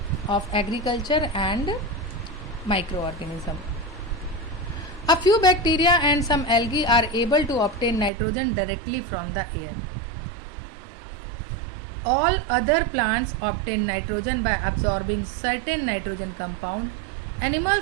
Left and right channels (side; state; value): left; drops out; at 8.1 s